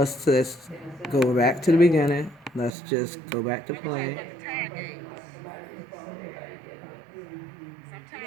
just go back to the beginning. Let's just go back to play. the time games.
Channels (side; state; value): left; drops out; at 2.7 s